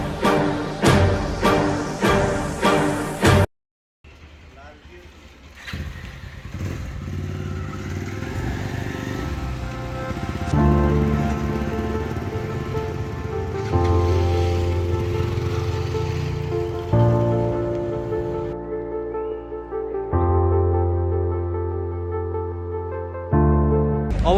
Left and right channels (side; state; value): both; identical; correlation 1.00